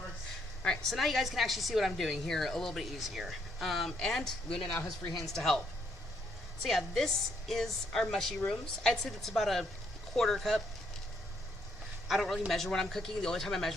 Alright, so now you guys can actually see what I'm doing here a little bit easier. And Luna now has free hands to help. So yeah, this is our mushy rooms. I'd say that's about a quarter cup. I don't really measure when I'm cooking. The only time I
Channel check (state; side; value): normal; both; correlation 0.72